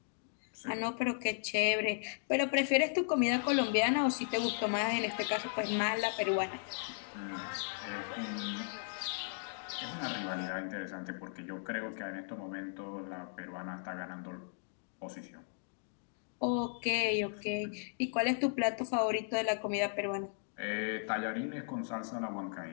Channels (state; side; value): silent; right; digital silence